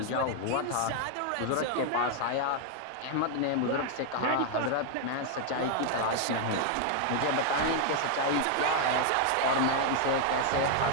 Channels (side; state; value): both; different; correlation 0.00